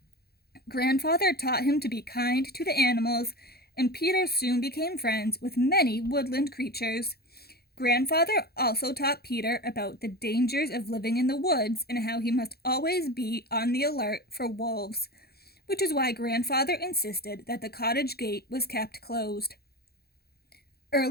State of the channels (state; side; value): late; right; 0.46 ms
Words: Grandfather taught him to be kind to the animals, and Peter soon became friends with many woodland creatures. Grandfather also taught Peter about the dangers of living in the woods and how he must always be on the alert for wolves, which is why Grandfather insisted that the cottage gate was kept closed.